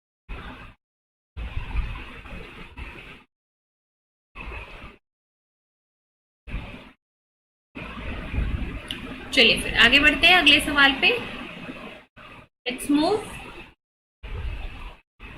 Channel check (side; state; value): both; identical; correlation 1.00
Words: चलिए फिर आगे बढ़ते हैं अगले सवाल पे। Let's move.